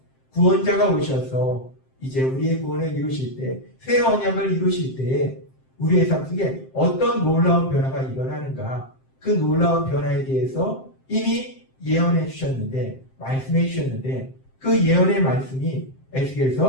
구원자가 오셔서 이제 우리의 구원을 이루실 때, 새 언약을 이루실 때에 우리의 삶 속에 어떤 놀라운 변화가 일어나는가, 그 놀라운 변화에 대해서 이미 예언해 주셨는데, 말씀해 주셨는데, 그 예언의 말씀이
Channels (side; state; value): right; late; 7.6 ms